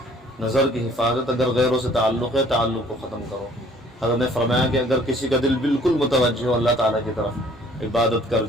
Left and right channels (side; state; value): both; normal; correlation 0.57